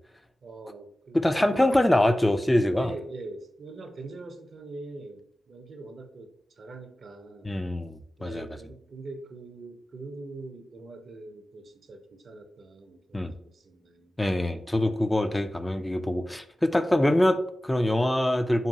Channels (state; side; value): normal; both; correlation 0.96